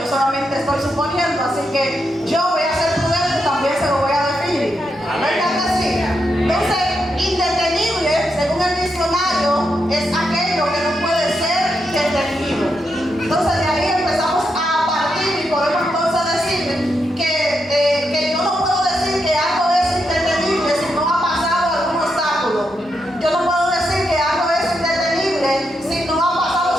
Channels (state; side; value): normal; both; correlation 0.83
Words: yo solamente estoy suponiendo, así que yo voy a ser prudente y también se lo voy a definir. ¿Verdad que sí? Entonces, indetenible, según el diccionario, es aquello que no puede ser detenido. Entonces, de ahí empezamos a partir y podemos entonces decir que yo no puedo decir que algo es indetenible si no ha pasado algún obstáculo. Yo no puedo decir que algo es indetenible si no ha